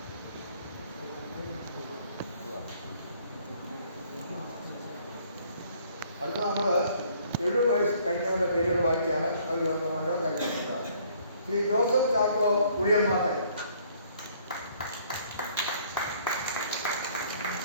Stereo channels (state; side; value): inverted; both; correlation -0.61